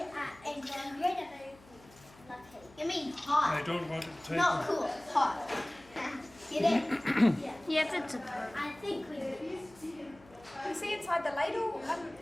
are incredibly lucky. You mean hot? I don't want it to take Not cool, hot. Get it? Yes, it's a. I think we do. You see inside the ladle,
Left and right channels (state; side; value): noise; left; hum, 25 dB below the sound